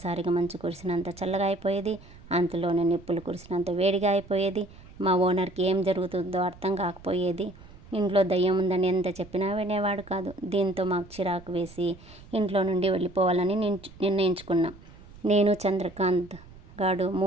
మంచు కురిసినంత చల్లగా అయిపోయేది. అంతలోనే నిప్పులు కురిసినంత వేడిగా అయిపోయేది. మా ఓనర్కి ఏం జరుగుతుందో అర్థం కాకపోయేది. ఇంట్లో దయ్యం ఉందని ఎంత చెప్పినా వినేవాడు కాదు. దీంతో మాకు చిరాకు వేసి ఇంట్లో నుండి వెళ్ళిపోవాలని నిర్ణయించుకున్నాం. నేను చంద్రకాంత్ గాడు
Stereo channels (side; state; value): right; noise; rumble, 20 dB below the sound